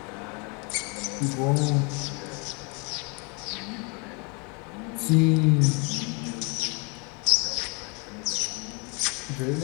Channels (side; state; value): right; quieter; 33.3 dB